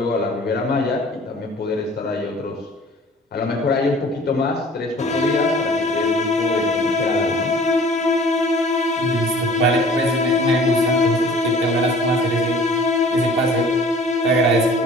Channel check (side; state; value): both; normal; correlation 0.49